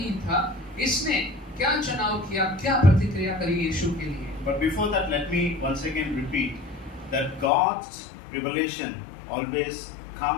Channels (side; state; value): right; drops out; at 7.5 s